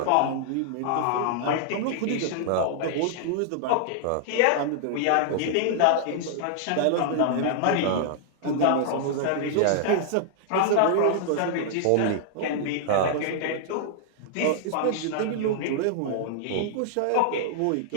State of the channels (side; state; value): both; different; correlation -0.01